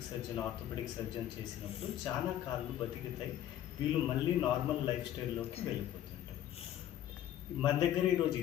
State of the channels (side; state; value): right; quieter; 11.7 dB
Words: surgeon, orthopaedic surgeon చేసినప్పుడు చాలా కాళ్ళు బతికితాయి. వీళ్ళు మళ్ళీ నార్మల్ లైఫ్ స్టైల్లోకి వెళ్ళిపోతారు. మన దగ్గర ఈరోజు